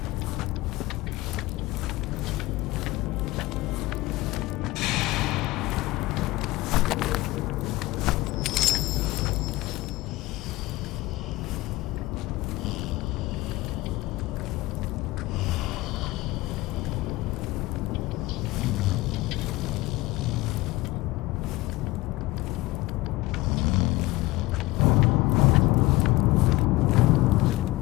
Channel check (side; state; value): right; quieter; 19.7 dB